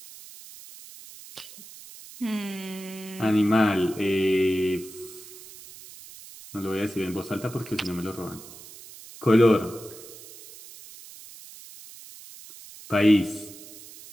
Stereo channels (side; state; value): right; noise; hiss, 17 dB below the sound